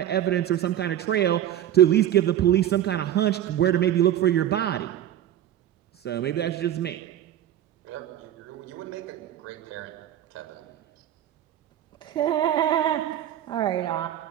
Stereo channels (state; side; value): quieter; left; 11.5 dB